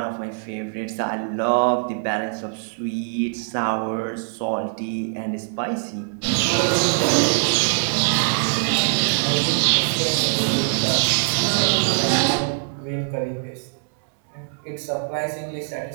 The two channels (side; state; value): left; silent; digital silence